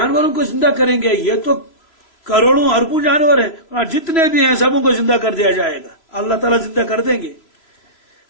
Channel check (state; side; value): late; right; 3.0 ms